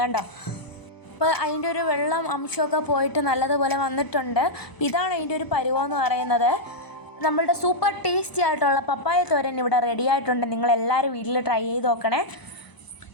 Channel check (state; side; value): late; right; 1.0 ms